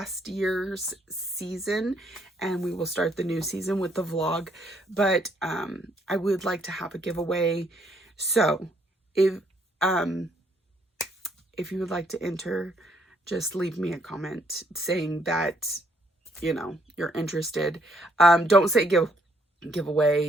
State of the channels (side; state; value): both; normal; correlation 0.69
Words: year's season, and we will start the new season with the vlog. But I would like to have a giveaway. So if you would like to enter, just leave me a comment saying that, you know, you're interested. Don't say